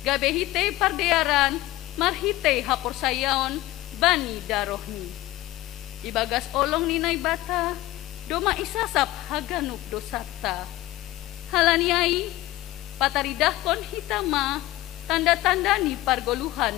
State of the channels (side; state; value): right; quieter; 17.2 dB